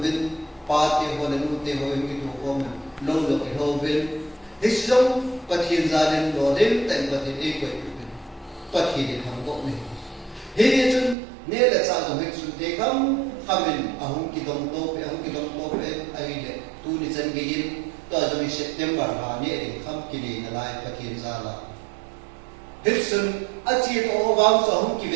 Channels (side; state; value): left; drops out; at 11.2 s